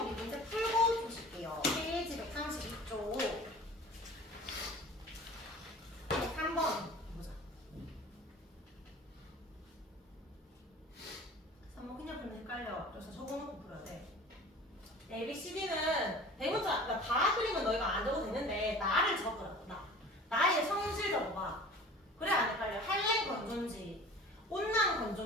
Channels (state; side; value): normal; both; correlation 0.41